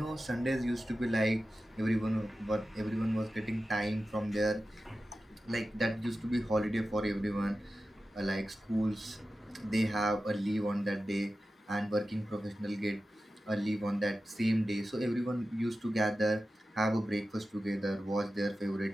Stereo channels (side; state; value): both; normal; correlation 0.93